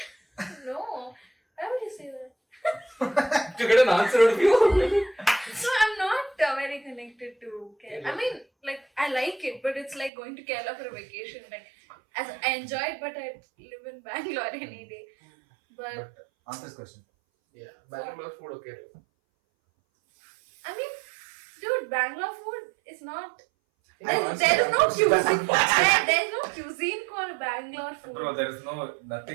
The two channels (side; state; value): left; drops out; at 10.1 s